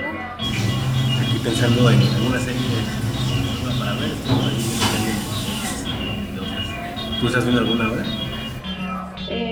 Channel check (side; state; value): both; identical; correlation 1.00